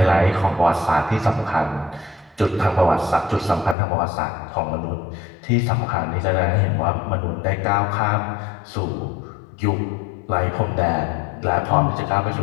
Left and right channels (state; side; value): drops out; right; at 3.8 s